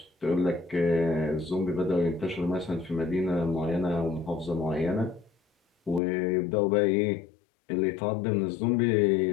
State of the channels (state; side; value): drops out; right; at 6.0 s